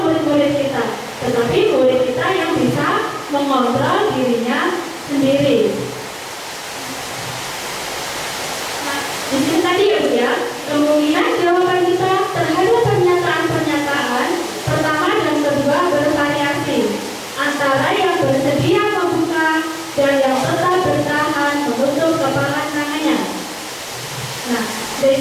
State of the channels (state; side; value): identical; both; correlation 1.00